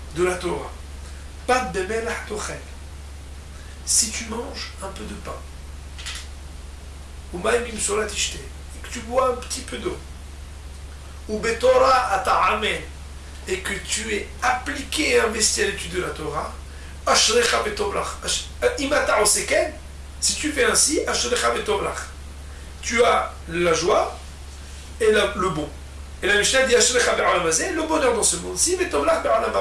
de la Torah. Pat bemelach tochel. Si tu manges un peu de pain, ou maïm imsolat ishte, tu bois un petit peu d'eau, ou betorah ata'amel, et que tu es appliqué et investi à l'étude de la Torah, ashrecha betovlach, imata oseken, si tu fais ainsi, ashrecha betovlach, tu as la joie et le bon. Et la Mishnah dit ashrecha be'olam hazeh, le bonheur dans ce monde-ci, betovlach be'olam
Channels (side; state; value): both; identical; correlation 1.00